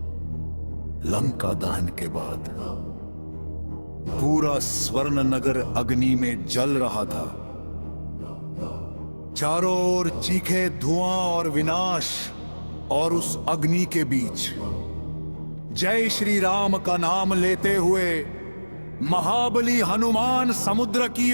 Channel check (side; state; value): both; inverted; correlation -1.00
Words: लंका दहन के बाद पूरा स्वर्ण नगर अग्नि में जल रहा था। चारों ओर चीखे धुआं और विनाश, और उस अग्नि के बीच जय श्री राम का नाम लेते हुए महाबली हनुमान समुद्र की